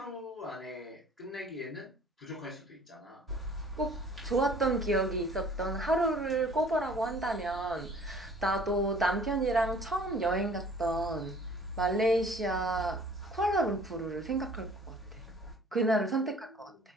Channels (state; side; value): normal; both; correlation 0.52